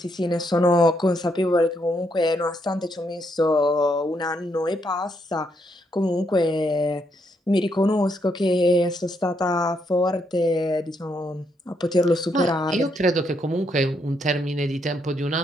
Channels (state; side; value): normal; both; correlation 0.76